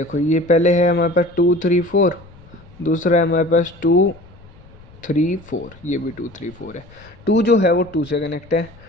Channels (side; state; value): left; noise; rumble, 23 dB below the sound